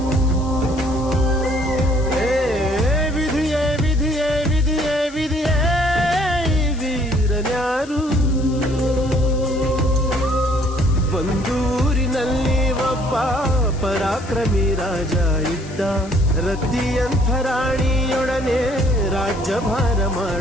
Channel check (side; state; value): left; noise; hiss, 20 dB below the sound